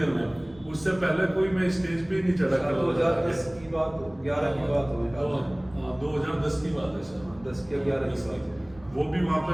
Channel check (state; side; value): noise; right; rumble, 23 dB below the sound